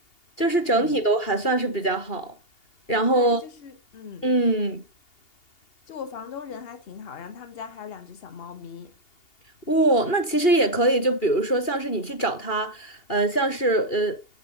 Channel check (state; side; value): late; right; 2.8 ms